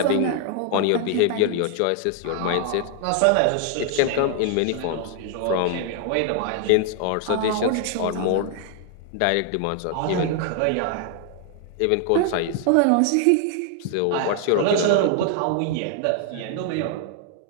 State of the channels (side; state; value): both; different; correlation 0.00